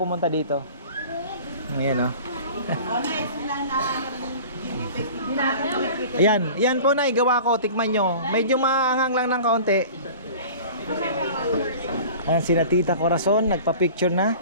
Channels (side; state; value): both; inverted; correlation -0.41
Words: dito. Ayan yan po na igawa ko, tikman nyo. Medyo maanghang lang ng kaunti. Ayan, sina Tita Corazon, nagpa-picture na.